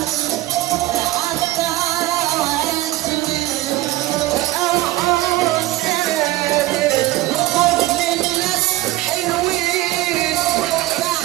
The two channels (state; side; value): quieter; left; 17.3 dB